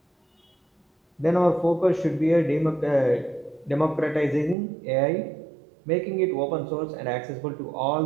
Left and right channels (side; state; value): left; drops out; at 4.5 s